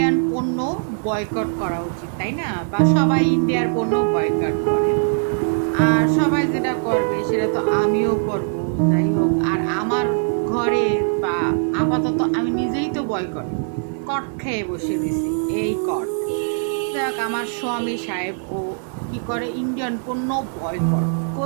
পণ্য বয়কট করা উচিত, তাই না? বা সবাই ইন্ডিয়ার পণ্য বয়কট করে, আর সবাই যেটা করবে সেটা তো আমিও করব। যাই হোক, আর আমার ঘরে বা আপাতত আমি নিজেই তো বয়কট কট খেয়ে বসে দিছি। এই কট দেখ, আমার স্বামী সাহেব ও কি করে, ইন্ডিয়ান পণ্য বয়কট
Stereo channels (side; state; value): left; silent; 65 dB below the other